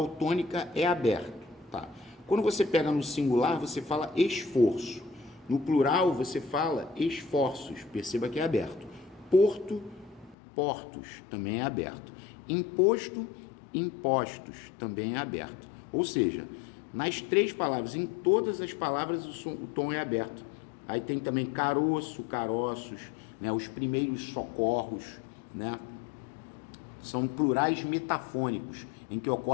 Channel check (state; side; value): drops out; right; at 10.4 s